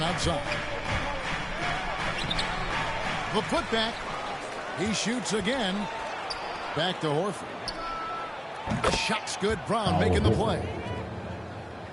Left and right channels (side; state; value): both; identical; correlation 1.00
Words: outside. The putback. He shoots again. Back to Horford. The shot's good. Brown making the play.